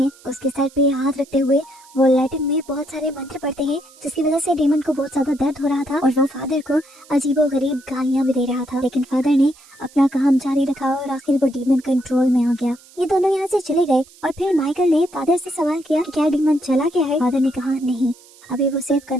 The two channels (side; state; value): right; noise; hiss, 25 dB below the sound